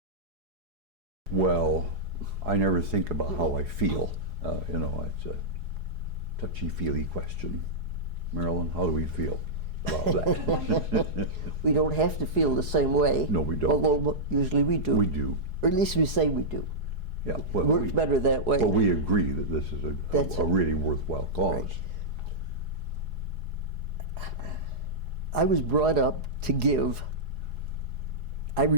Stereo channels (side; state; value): left; late; 4.8 ms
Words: Well, I never think about how I feel. You know, it's a touchy-feely question. Marilyn, how do we feel about that? We don't have to feel the same way. No, we don't. Although usually we do. We do. Or at least we say we do. Yeah. It Well, works better that way. But we agree that this is That's a it. really worthwhile cause. Right. I was brought up to give. I